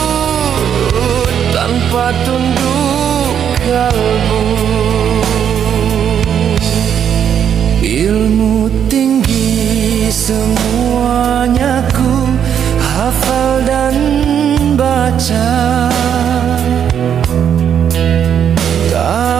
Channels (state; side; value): quieter; left; 8.7 dB